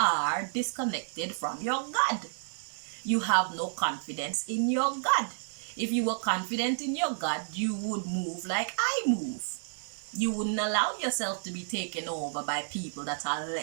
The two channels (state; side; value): silent; left; digital silence